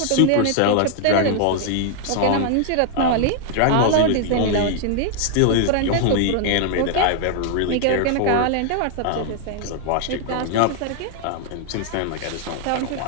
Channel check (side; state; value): both; different; correlation 0.00